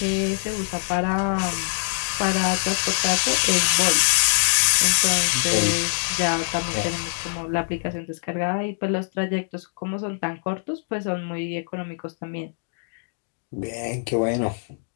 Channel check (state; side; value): silent; right; digital silence